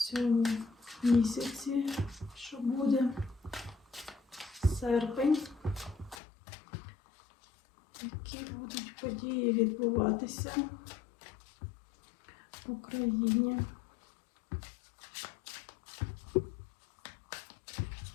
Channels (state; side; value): drops out; right; at 6.2 s